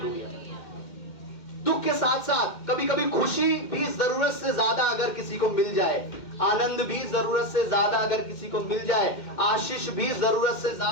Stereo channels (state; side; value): late; right; 2.1 ms